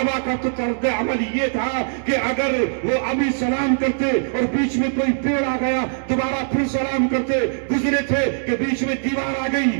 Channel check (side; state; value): left; silent; digital silence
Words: کا تو طرز عمل یہ تھا کہ اگر وہ ابھی سلام کرتے اور بیچ میں کوئی پیڑ آ گیا دوبارہ پھر سلام کرتے، گزرے تھے کہ بیچ میں دیوار آ گئی